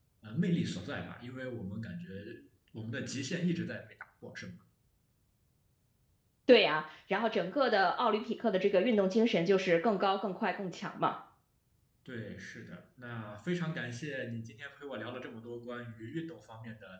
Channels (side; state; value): both; identical; correlation 1.00